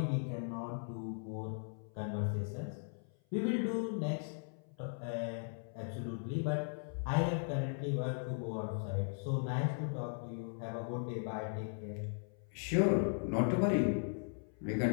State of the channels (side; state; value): right; silent; 52 dB below the other